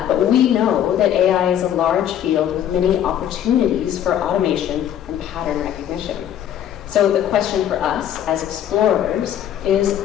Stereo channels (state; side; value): quieter; right; 10.4 dB